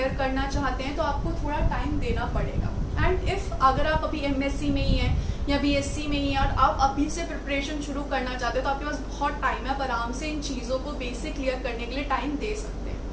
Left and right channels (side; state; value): both; identical; correlation 1.00